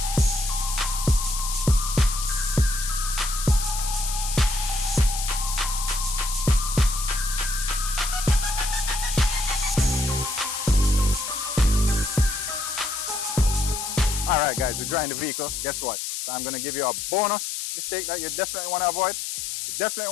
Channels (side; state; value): left; noise; hiss, 4 dB below the sound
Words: Alright guys, we're drying the vehicle. Guess what? I'm going to give you a bonus mistake that you definitely want to avoid. You definitely